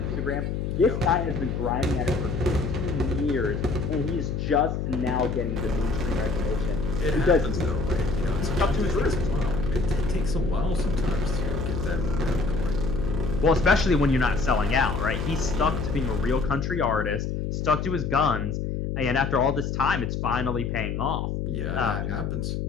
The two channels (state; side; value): noise; left; hum, 2 dB below the sound